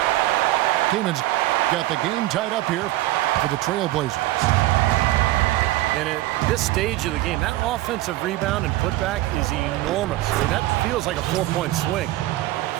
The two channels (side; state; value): left; quieter; 16.8 dB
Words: Kaman's got the game tied up here for the Trailblazers. And at this stage of the game, that offensive rebound and putback is enormous. I mean, that feels like a 4-point swing.